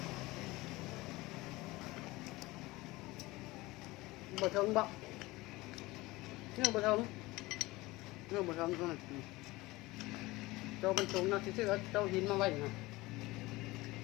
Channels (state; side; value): quieter; right; 20.4 dB